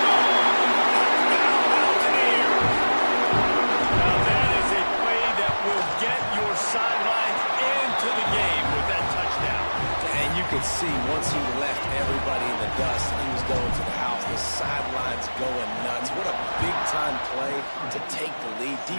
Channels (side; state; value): both; inverted; correlation -1.00